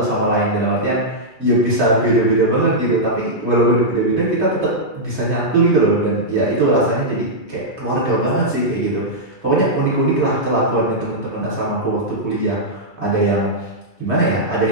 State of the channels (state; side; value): late; right; 2.3 ms